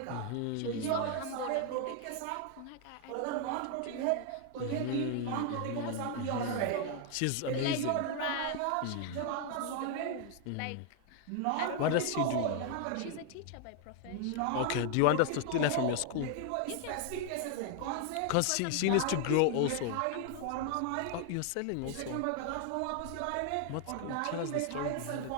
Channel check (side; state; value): both; different; correlation 0.00